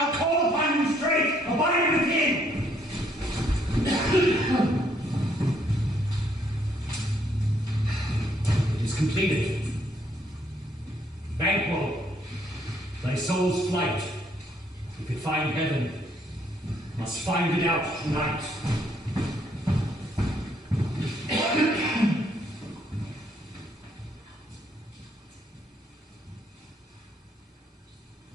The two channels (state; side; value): normal; both; correlation 0.69